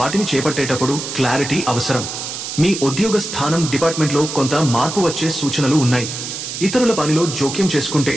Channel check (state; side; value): noise; right; hiss, 7 dB below the sound